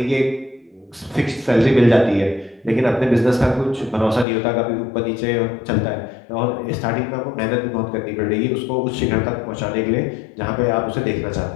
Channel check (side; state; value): right; drops out; at 4.2 s